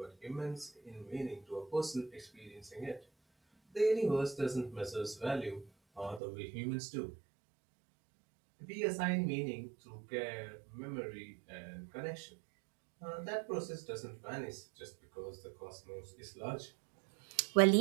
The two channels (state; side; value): drops out; left; at 6.2 s